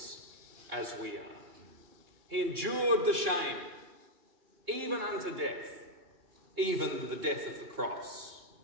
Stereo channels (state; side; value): late; left; 2.9 ms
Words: as we are. He endured the shame, even unto death, even the death of the cross.